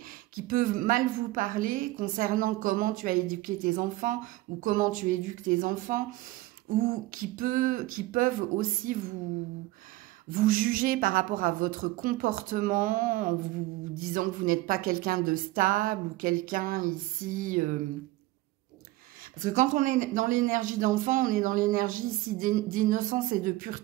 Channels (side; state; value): left; quieter; 18.0 dB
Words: qui peut mal vous parler concernant comment tu as éduqué tes enfants ou comment tu éduques tes enfants, ou qui peuvent aussi vous juger par rapport à votre comportement en vous disant que vous n'êtes pas quelqu'un de stable ou quelqu'un ici... Parce que quand on est dans l'énergie d'enfant, on est dans l'énergie ici d'innocence et de